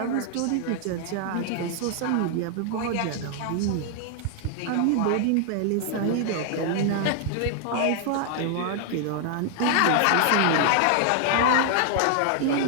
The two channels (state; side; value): different; both; correlation 0.00